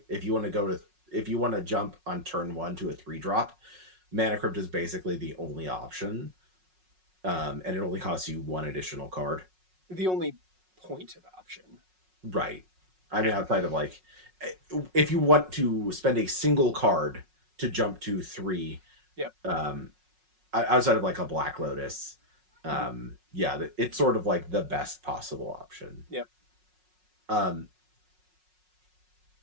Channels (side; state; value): left; late; 5.4 ms